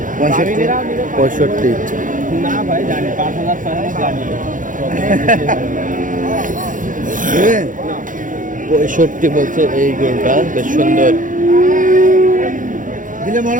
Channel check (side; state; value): left; late; 0.38 ms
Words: 65। না ভাই, জানি 5,000 জানি। 65 বলছে এই গরুটা, বেশ সুন্দর। দিলে মনে